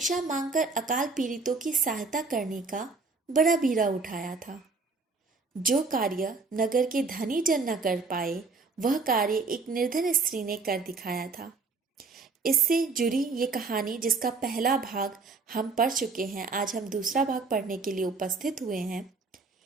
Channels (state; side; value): quieter; left; 4.1 dB